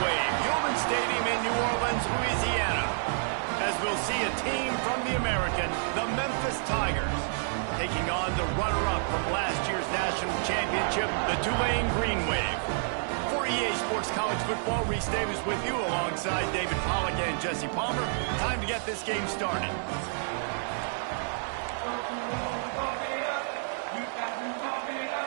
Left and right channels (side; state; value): left; silent; 58 dB below the other